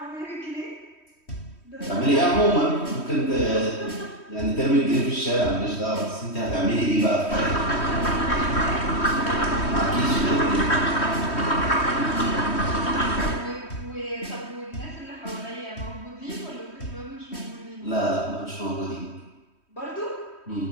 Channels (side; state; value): right; late; 3.1 ms